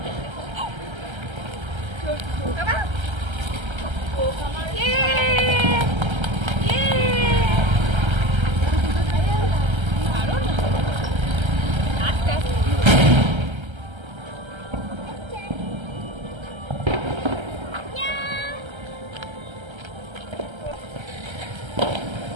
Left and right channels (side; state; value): left; late; 1.3 ms